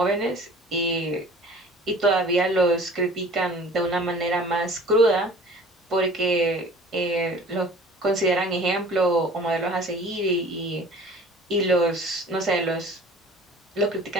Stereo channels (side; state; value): both; normal; correlation 0.46